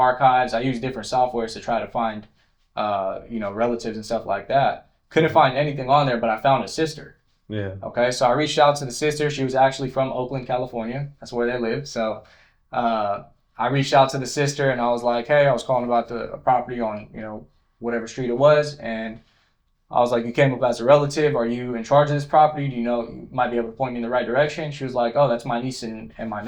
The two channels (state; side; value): identical; both; correlation 1.00